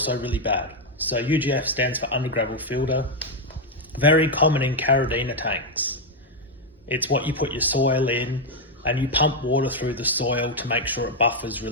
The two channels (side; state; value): both; normal; correlation 0.02